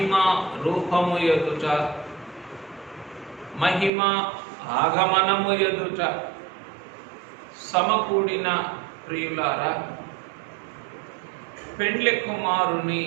రూపము ఎదుట మహిమ ఆగమనము ఎదుట సమకూడిన ప్రియులారా, పెండ్లి కుమారుని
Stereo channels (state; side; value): drops out; left; at 3.9 s